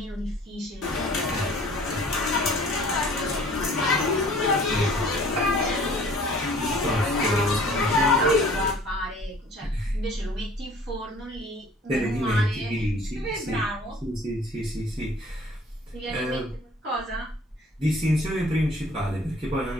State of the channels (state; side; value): normal; both; correlation 0.51